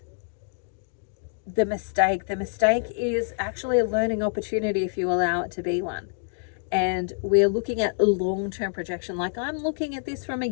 the mistake. The mistake is actually a learning opportunity if you allow it to be one. And we're looking at a long-term projection. Like, I'm looking at this from a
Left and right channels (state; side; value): silent; right; digital silence